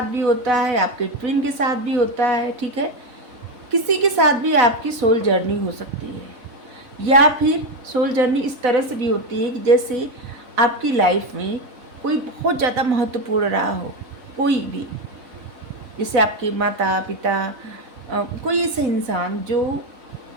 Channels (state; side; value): late; left; 4.0 ms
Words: भी होता है, आपके ट्विन के साथ भी होता है। ठीक है, किसी के साथ भी आपकी सोल जर्नी हो सकती है, या फिर सोल जर्नी इस तरह से भी होती है कि जैसे आपकी लाइफ में कोई बहुत ज़्यादा महत्वपूर्ण रहा हो, कोई भी, जैसे आपके माता पिता, कोई ऐसा इंसान